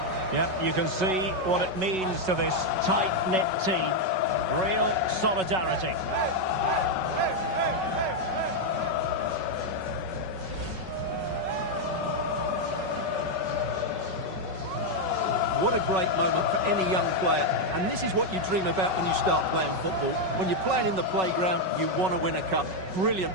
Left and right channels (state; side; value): late; left; 5.3 ms